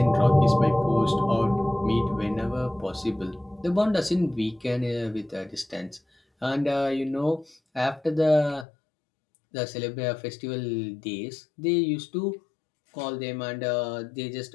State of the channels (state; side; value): drops out; right; at 8.7 s